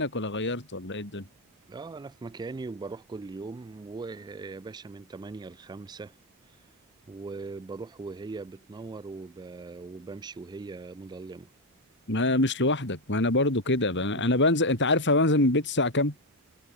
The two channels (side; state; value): both; normal; correlation 0.05